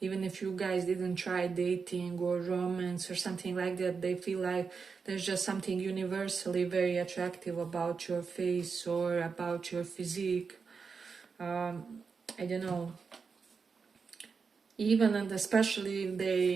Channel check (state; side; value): quieter; left; 5.3 dB